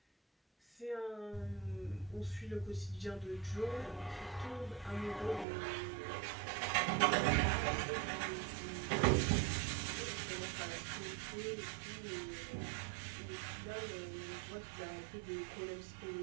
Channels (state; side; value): drops out; left; at 5.5 s